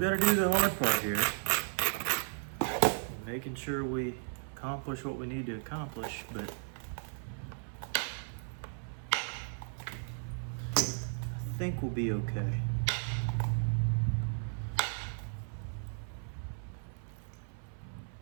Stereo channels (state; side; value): silent; left; 54 dB below the other